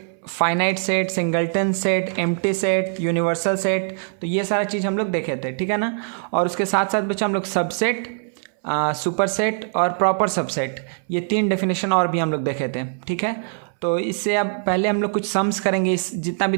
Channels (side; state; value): left; silent; 64 dB below the other